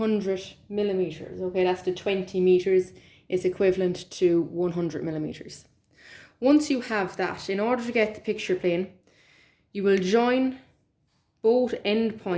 millimeters. Okay, that's the 20 meters is equivalent to 100 millimeters. Once you have that, in order to get the picture plane, you will join both end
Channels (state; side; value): identical; both; correlation 1.00